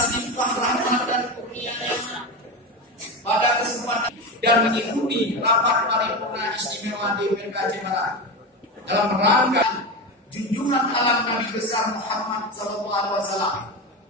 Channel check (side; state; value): both; normal; correlation 0.20